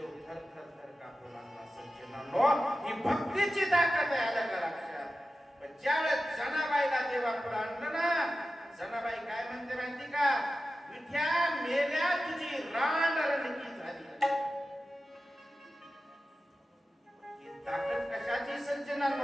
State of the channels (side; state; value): both; normal; correlation 0.93